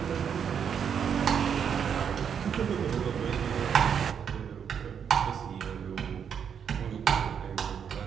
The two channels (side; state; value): left; quieter; 7.7 dB